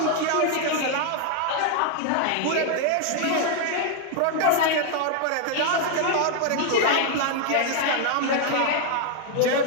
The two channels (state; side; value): different; both; correlation 0.00